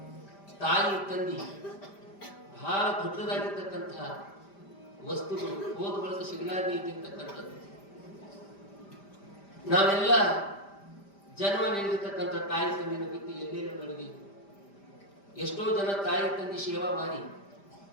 ತಾಯಿ ತಂದಿ ಬಹಳ ದೊಡ್ಡದಾಗಿರ್ತಕ್ಕಂತಹ ವಸ್ತುಗಳು ಹೋದ ಬಳಕ ಸಿಗಲಾರದೆ ಇದ್ದಿರ್ತಕ್ಕಂಥದ್ದು. ನಾವೆಲ್ಲ ಜನ್ಮ ನೀಡಿರ್ತಕ್ಕಂಥ ತಾಯಿ ತಂದಿನ ಬಿಟ್ಟು ಎಲ್ಲೆಲ್ಲೂ ನಡೆದಿ. ಎಷ್ಟೋ ಜನ ತಾಯಿ ತಂದಿ ಸೇವಾ ಮಾಡಿ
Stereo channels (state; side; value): late; right; 5.0 ms